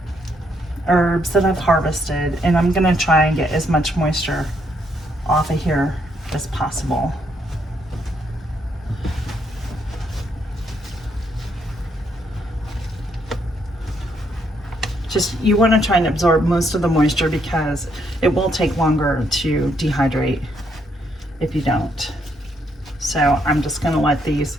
herbs that I've harvested, and I'm gonna try and get as much moisture off of here as possible. Just, you want to try and absorb most of the moisture because it will take longer to dehydrate if you don't. So I'm just going to let these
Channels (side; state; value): both; normal; correlation 0.74